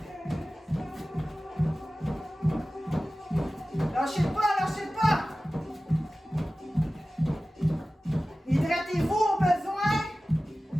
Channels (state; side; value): normal; both; correlation 0.96